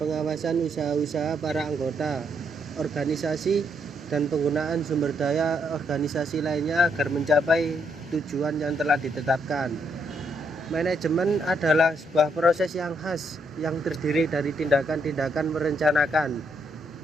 usaha-usaha para anggota organisasi dan penggunaan sumber daya organisasi lainnya agar mencapai tujuan yang telah ditetapkan. Manajemen adalah sebuah proses yang khas yang terdiri dari tindakan-tindakan merencanakan,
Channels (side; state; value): both; normal; correlation 0.75